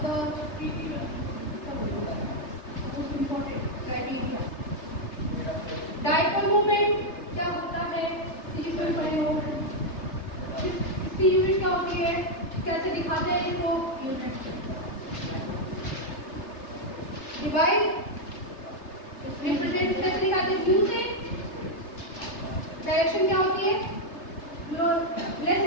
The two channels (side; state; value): right; late; 3.3 ms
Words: इसकी यूनिट क्या होती है, कैसे दिखाते हैं इसको, यूनिट डिवाइड रिप्रेजेंट कैसे दिखाते हैं, क्यू से। डायरेक्शन क्या होती है, जो लेस